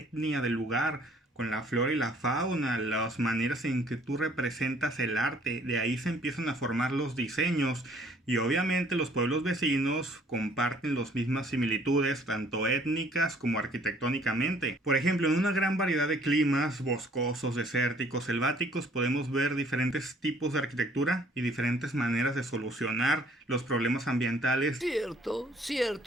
del lugar, con la flora y la fauna, las maneras en que tú representas el arte. De ahí se empiezan a formar los diseños. Y obviamente los pueblos vecinos comparten las mismas similitudes, tanto étnicas como arquitectónicamente. Por ejemplo, en una gran variedad de climas, boscosos, desérticos, selváticos, podemos ver diferentes tipos de arquitectura y diferentes maneras de solucionar los problemas ambientales. Cierto,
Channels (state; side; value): normal; both; correlation 0.59